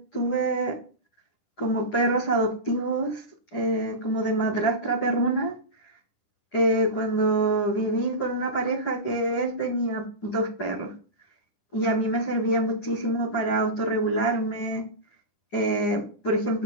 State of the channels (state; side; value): late; right; 10 ms